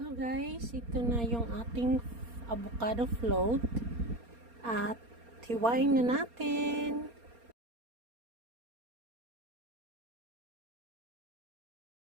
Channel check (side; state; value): left; late; 4.3 ms